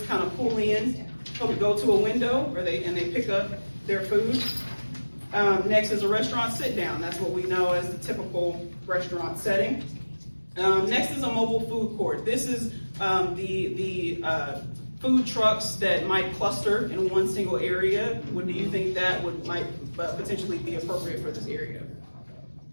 kind of pull in, go to a window, and they pick up their food. Next is a restaurant sit down. That's what we know as the typical restaurant setting. Next is a mobile food court. This is the food trucks that might cluster in one single area. What do you think that might potentially be appropriate for this area?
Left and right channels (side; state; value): both; inverted; correlation -1.00